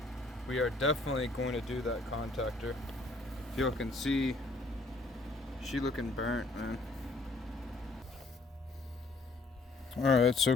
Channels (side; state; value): right; quieter; 3.1 dB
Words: We are definitely going to do that contactor. If y'all can see, she looking burnt, man. Alright, so